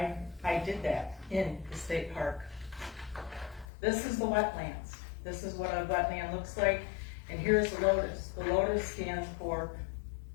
did that in the state park. This is the wetlands. This is what a wetland looks like, and here's the lotus. The lotus stands for,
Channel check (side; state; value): right; drops out; at 3.7 s